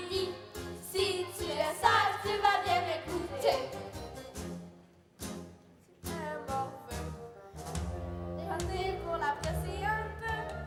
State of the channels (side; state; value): both; identical; correlation 1.00